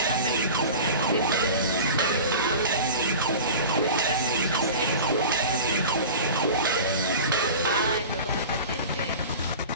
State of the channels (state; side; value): inverted; both; correlation -0.35